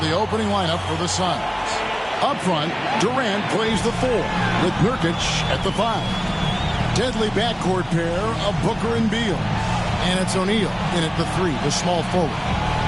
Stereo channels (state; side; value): identical; both; correlation 1.00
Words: opening lineup for the Suns. Up front, Durant plays the 4, with Nurkic at the 5. Deadly backcourt pair of Booker and Beal. And it's O'Neal in at the 3, the small forward.